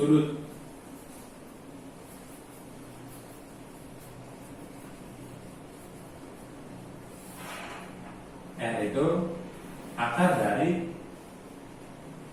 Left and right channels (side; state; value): both; identical; correlation 1.00